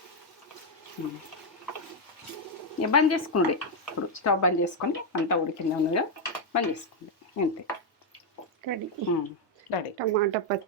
ఇక బంద్ చేసుకుండే. ఇప్పుడు స్టవ్ బంద్ చేసుకొని అంతా ఉడికిందా ఉన్నదా బంద్ చేసుకోండి, అంతే. Ready ready. టమాటా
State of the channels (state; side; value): normal; both; correlation 0.01